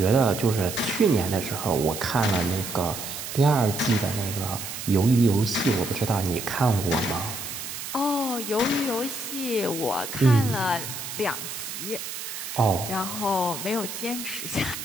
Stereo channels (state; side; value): noise; right; hiss, 7 dB below the sound